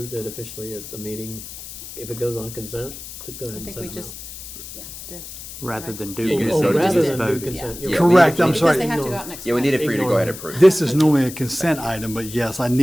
it officially at the meeting, if it goes on consent, to go ahead I and think send we them just, out. yeah, did. Rather than do Oh, consent, rather just than do vote. consent. Yeah. you're Correct, I'm Because sorry. they have to go out next Yeah, we Friday. needed for you to go ahead and approve. This is normally a consent item, but yes, I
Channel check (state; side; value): noise; left; hiss, 12 dB below the sound